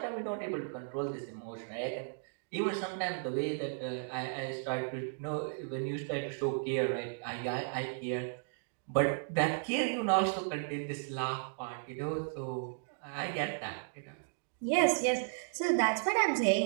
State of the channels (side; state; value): left; silent; digital silence